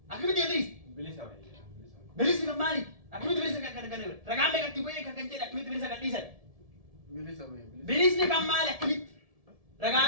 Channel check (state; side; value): late; left; 1.7 ms